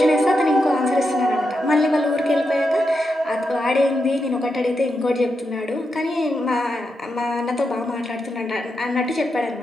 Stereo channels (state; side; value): normal; both; correlation 0.86